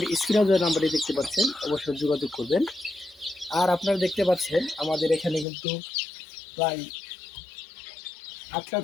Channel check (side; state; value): right; drops out; at 5.5 s